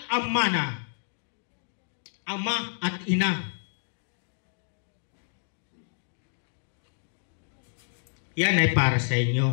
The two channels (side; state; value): right; silent; digital silence